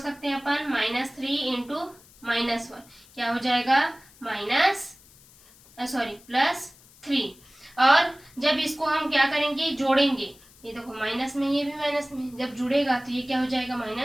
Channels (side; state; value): left; noise; hiss, 25 dB below the sound